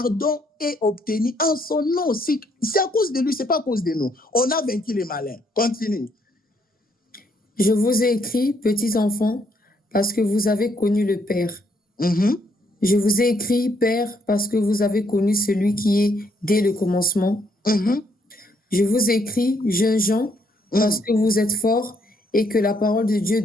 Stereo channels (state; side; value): normal; both; correlation 0.71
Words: est obtenu en son nom. C'est à cause de lui, c'est pas à cause de nous. On a vaincu les malins. Continue. Je vous ai écrit, petits enfants, parce que vous avez connu le Père. Je vous ai écrit, Père, parce que vous avez connu celui qui est dès le commencement. Je vous ai écrit, jeunes gens, parce que vous êtes forts et que la parole de Dieu